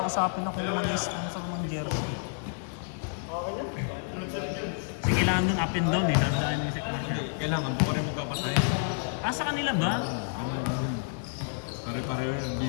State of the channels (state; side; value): silent; right; digital silence